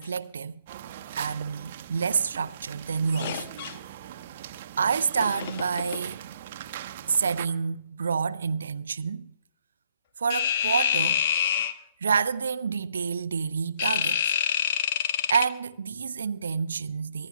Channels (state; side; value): inverted; both; correlation -0.70